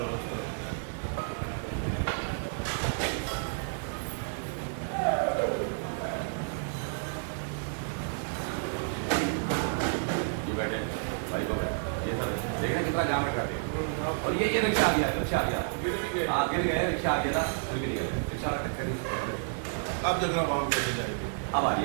वाला। बैठे गाड़ी को, ये सब देख रहे कितना जाम रखा दिया। और ये रिक्शा आ गया, रिक्शा आ गया, गिर गए, रिक्शा आ गया था, फिर गिर गए, रिक्शा टक्कर। अब देखना वहां कैसे जाएगी। अब आ रही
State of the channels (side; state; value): left; silent; digital silence